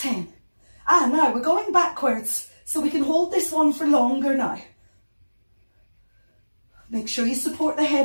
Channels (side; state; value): both; inverted; correlation -1.00